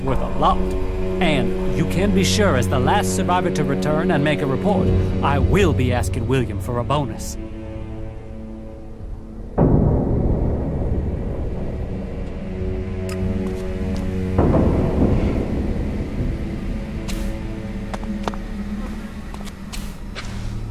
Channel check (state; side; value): identical; both; correlation 1.00